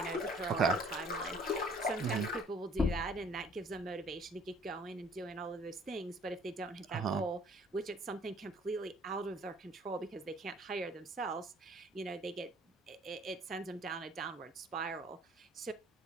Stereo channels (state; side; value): normal; both; correlation 0.56